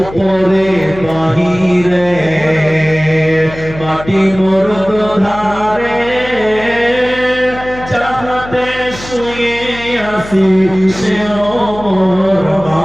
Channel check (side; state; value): left; noise; hum, 14 dB below the sound